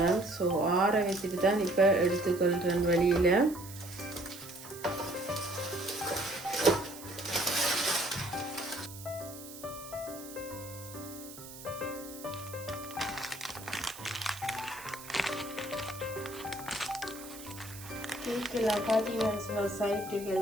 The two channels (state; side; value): noise; right; hiss, 14 dB below the sound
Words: ஸோ ஆற வச்சுட்டு தான் இப்போ எடுத்துக்கொள்கிறேன் வெளியில். கேக்கெல்லாம் பார்த்தீங்கன்னு சொன்னால்